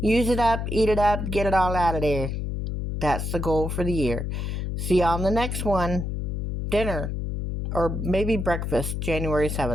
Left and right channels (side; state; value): left; noise; hum, 3 dB below the sound